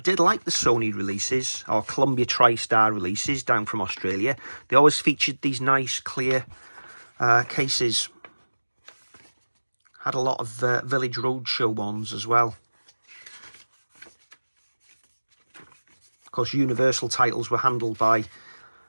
like the Sony releases, or Columbia TriStar releases down from Australia. They always featured these nice clear cases. Had a lot of Village Roadshow ones as well. Of course, Universal titles were handled by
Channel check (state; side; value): inverted; both; correlation -1.00